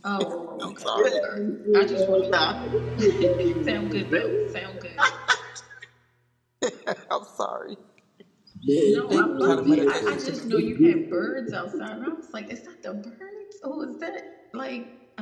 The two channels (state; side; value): identical; both; correlation 1.00